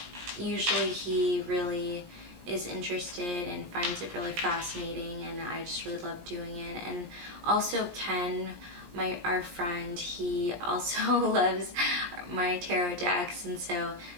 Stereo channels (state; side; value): late; left; 17 ms